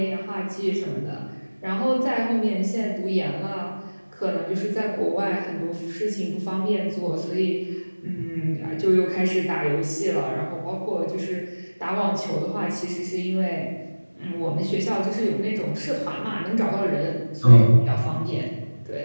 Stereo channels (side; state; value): both; inverted; correlation -1.00